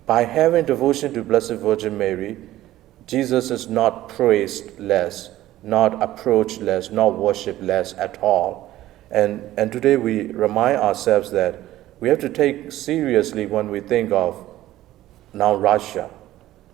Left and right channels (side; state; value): left; quieter; 14.8 dB